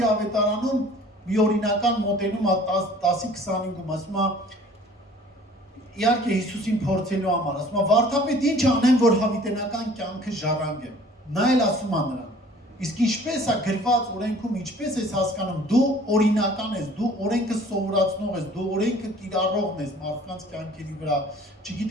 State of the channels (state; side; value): normal; both; correlation 0.51